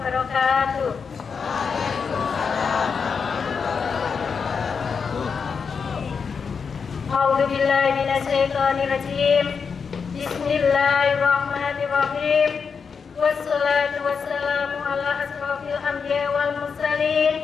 A'udzu billahi minasyaitonir rajim. Bismillahirrahmanirrahim. Wassalatu wassalamu ala asrofil anbiya wal mursalin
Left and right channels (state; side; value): quieter; right; 5.8 dB